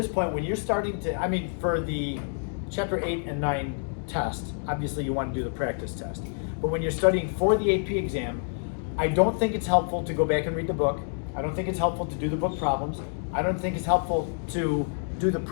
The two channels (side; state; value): right; silent; digital silence